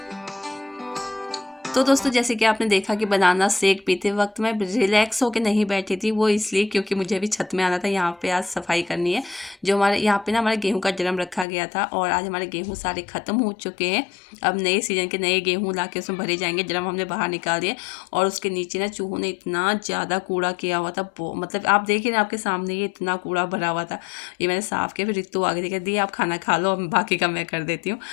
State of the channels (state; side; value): drops out; right; at 11.5 s